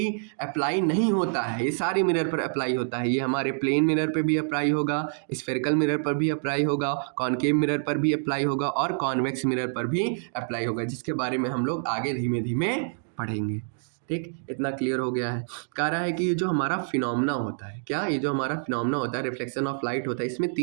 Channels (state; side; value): silent; left; digital silence